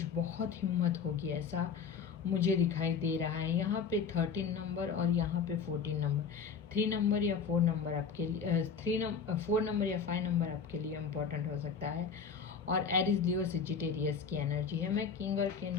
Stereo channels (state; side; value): quieter; right; 6.1 dB